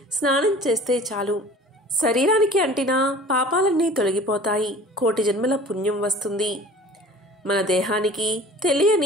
స్నానం చేస్తే చాలు. శరీరానికి అంటిన పాపాలన్నీ తొలగిపోతాయి. కోటి జన్మల పుణ్యం వస్తుంది. మన దేహానికి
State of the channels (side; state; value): both; normal; correlation 0.44